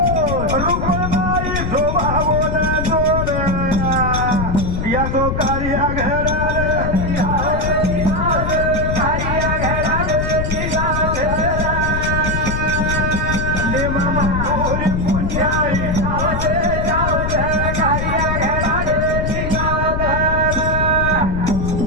रुक्मबाई शोभावोन जोड याचो कार्य घरार नेमा माधुरी पुण्याई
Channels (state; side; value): noise; left; rumble, 1 dB below the sound